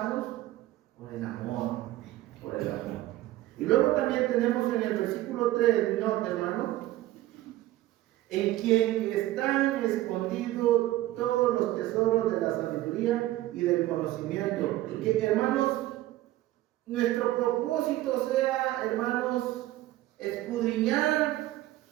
por el amor. Por el amor. Y luego también tenemos en el versículo 3, nota, hermano, en quien están escondidos todos los tesoros de la sabiduría y del conocimiento. Y que, hermanos, nuestro propósito sea, hermanos, escudriñar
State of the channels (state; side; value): quieter; left; 15.7 dB